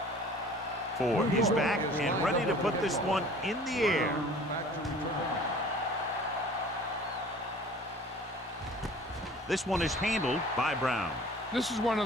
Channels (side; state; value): both; normal; correlation 0.47